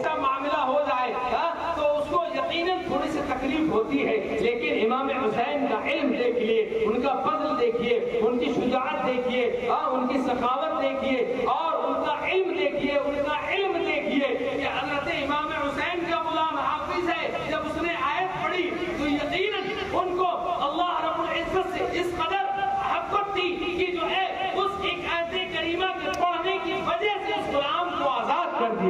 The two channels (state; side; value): identical; both; correlation 1.00